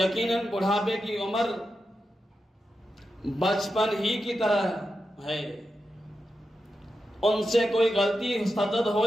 بڑھاپے کی عمر بچپن ہی کی طرح ہے، ان سے کوئی غلطی صدد ہو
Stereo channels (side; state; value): both; normal; correlation 0.89